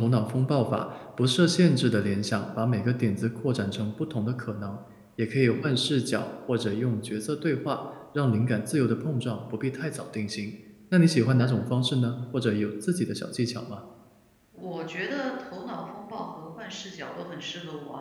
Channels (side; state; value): both; identical; correlation 1.00